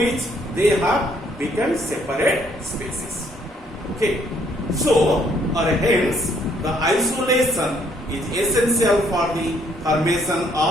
they have become separate species. Okay, so or hence the isolation is essential for the formation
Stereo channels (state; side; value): normal; both; correlation 0.67